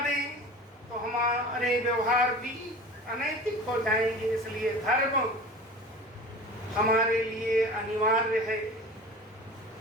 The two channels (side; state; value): both; normal; correlation 0.37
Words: तो हमारे व्यवहार भी अनैतिक हो जाएंगे। इसलिए धर्म हमारे लिए अनिवार्य है।